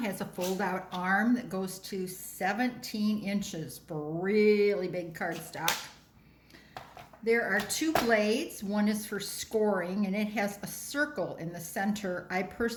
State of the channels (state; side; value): identical; both; correlation 1.00